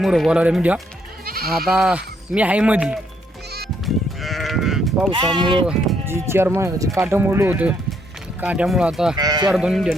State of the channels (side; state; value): both; normal; correlation 0.72